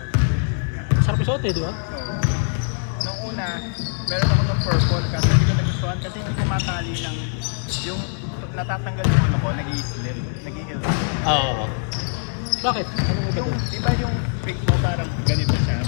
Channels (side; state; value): right; silent; digital silence